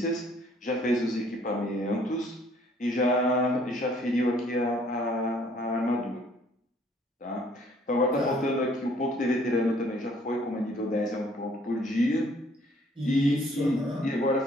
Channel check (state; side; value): normal; both; correlation 0.61